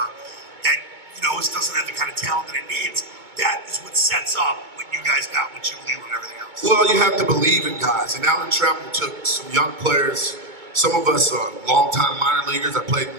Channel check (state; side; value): late; left; 2.2 ms